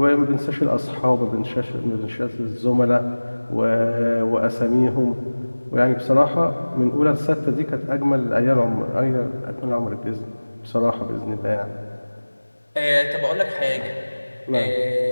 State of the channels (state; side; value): inverted; both; correlation -1.00